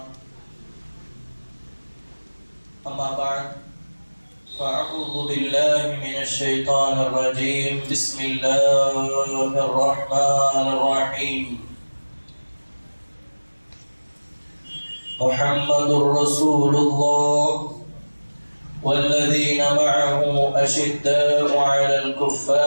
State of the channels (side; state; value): both; inverted; correlation -1.00